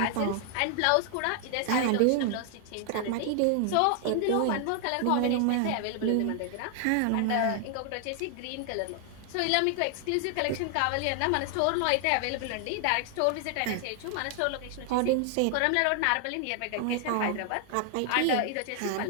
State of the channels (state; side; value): different; both; correlation 0.00